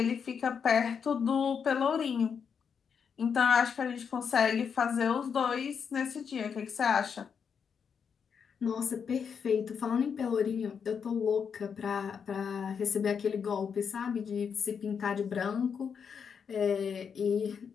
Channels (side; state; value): right; quieter; 6.7 dB